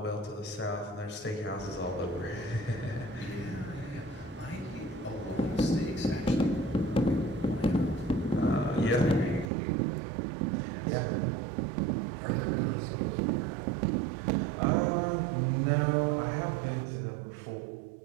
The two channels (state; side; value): drops out; left; at 9.5 s